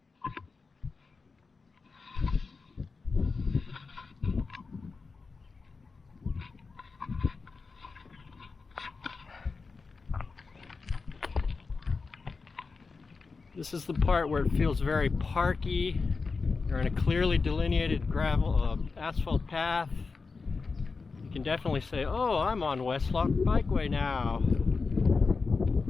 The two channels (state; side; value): quieter; right; 4.4 dB